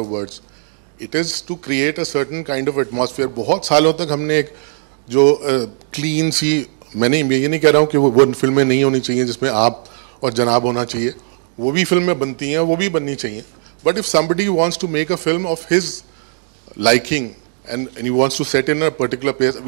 of words. It is to create a certain kind of atmosphere. बहुत सालों तक हमने एक जो क्लीन सी, मैं ये नहीं कह रहा हूँ कि वो फिल्में नहीं होनी चाहिए जिसमें आप और जनाब होना चाहिए, वो भी फिल्में बनती हैं, वो भी बननी चाहिए। But if somebody wants to make a film of his liking and he wants to set in a particular place,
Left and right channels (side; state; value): left; silent; digital silence